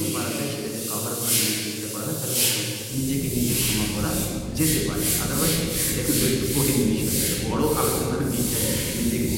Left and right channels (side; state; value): both; identical; correlation 1.00